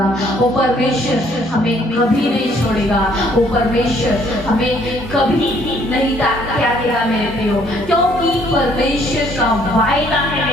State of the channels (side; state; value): right; noise; hum, 23 dB below the sound